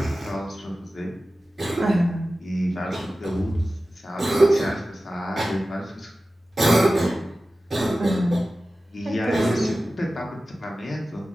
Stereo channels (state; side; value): normal; both; correlation 0.95